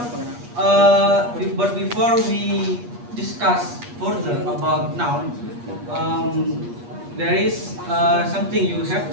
we discuss further about noun, there is something you have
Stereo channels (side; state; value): left; late; 8.4 ms